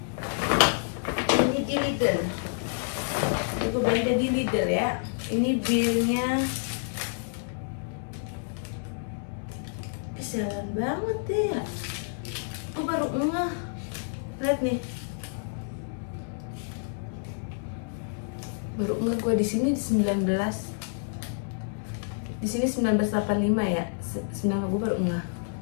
Ini di Lidl. Aku belanja di Lidl ya. Ini bilnya kesialan banget ya. Aku baru ngeh. Lihat nih. Baru ngeh gue di sini di 19. Di sini 1985 ya. 9 gue baru ngeh.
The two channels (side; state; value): right; silent; digital silence